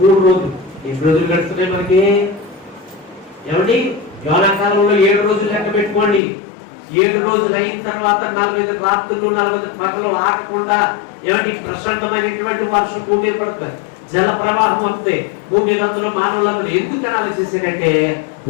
రోజులు. ఎన్ని రోజులు గడుస్తున్నాయి మనకి? ఏమండి, యోనాకాలంలో 7 రోజులు లెక్క పెట్టుకోండి. 7 రోజులు అయిన తర్వాత 40 రాత్రులు 40 పగలు ఆగకుండా ఏమండి ప్రశాంతమైనటువంటి వర్షం భూమి మీద పడుతుంది, జల ప్రవాహం వస్తాయి. భూమి మీద అందులో మానవులందరూ ఎందుకు ఆలోచించారంటే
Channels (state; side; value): drops out; right; at 6.2 s